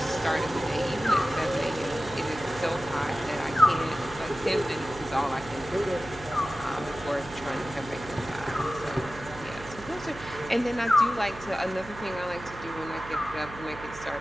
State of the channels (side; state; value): right; noise; hum, 15 dB below the sound